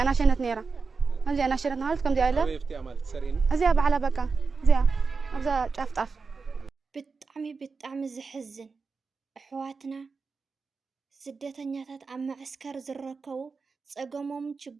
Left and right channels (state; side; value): quieter; left; 4.7 dB